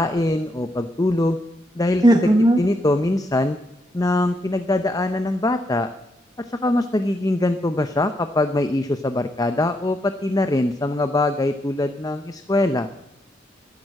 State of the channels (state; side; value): normal; both; correlation 0.78